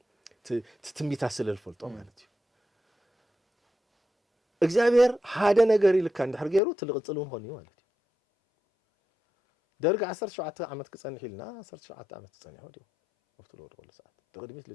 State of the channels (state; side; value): drops out; right; at 6.6 s